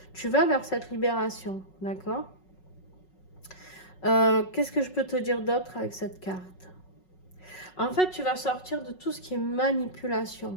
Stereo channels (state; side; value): late; right; 5.4 ms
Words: Tu vas vers cette libération. D'accord? Qu'est-ce que je peux te dire d'autre avec cette carte? En fait, tu vas sortir de tout ce qui est manipulation.